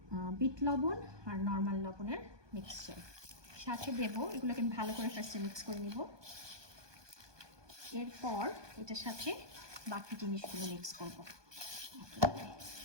বিট লবণ আর নর্মাল লবণের মিক্সচার সাথে দেবো। এগুলোকে আমি ভালো করে ফার্স্টে মিক্স করে নিব। এরপর এটার সাথে বাকি জিনিসগুলো মিক্স করব।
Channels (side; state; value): left; late; 1.2 ms